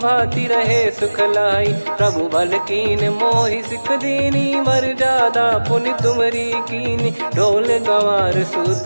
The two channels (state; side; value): inverted; both; correlation -1.00